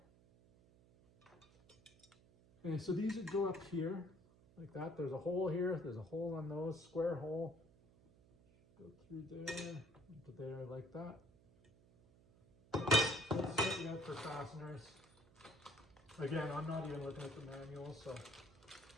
way. Okay, so these would go up here like that. There's a hole here. There's a hole on those, square hole. Go through there, into there like that. So let's set you up for fasteners. Again, I'm not even looking at the manual, so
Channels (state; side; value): noise; right; hum, 26 dB below the sound